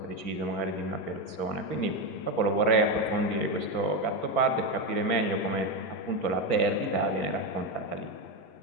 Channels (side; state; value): right; late; 6.0 ms